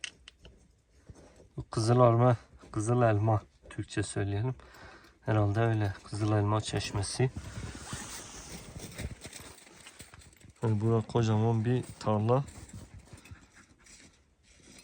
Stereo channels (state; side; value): identical; both; correlation 1.00